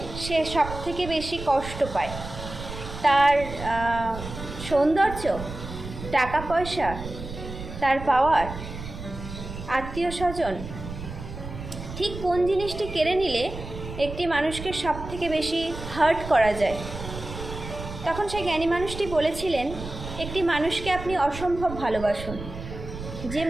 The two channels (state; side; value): noise; right; rumble, 10 dB below the sound